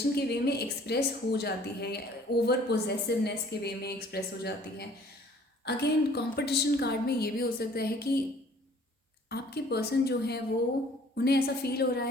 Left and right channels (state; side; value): normal; both; correlation 0.54